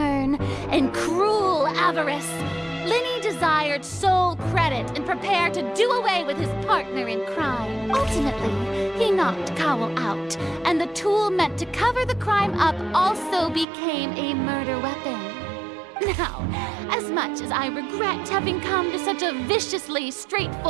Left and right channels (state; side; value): drops out; left; at 13.7 s